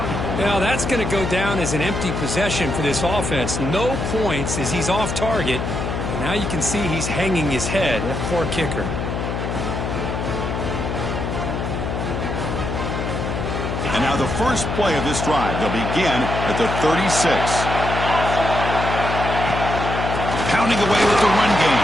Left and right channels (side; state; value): left; noise; hum, 3 dB below the sound